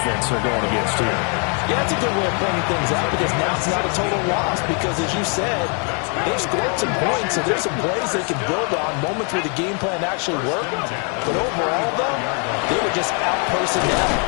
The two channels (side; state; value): right; quieter; 38.5 dB